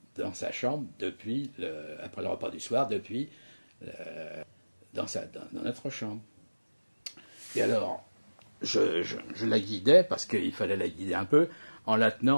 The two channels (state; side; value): inverted; both; correlation -1.00